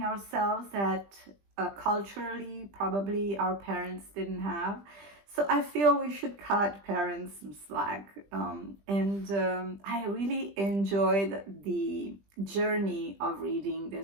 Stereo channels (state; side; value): late; left; 20 ms